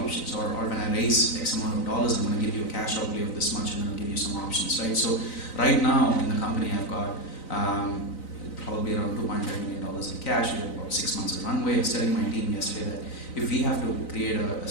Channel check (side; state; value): right; late; 3.9 ms